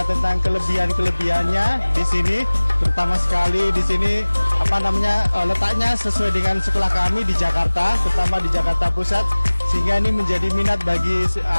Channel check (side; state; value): both; inverted; correlation -1.00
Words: tentang kelebihan-kelebihannya di sini, terutama sekali di sini letaknya sesuai dengan sekolah kami di Jakarta, terutama di Jakarta Pusat, sehingga ini menjadi minat bagi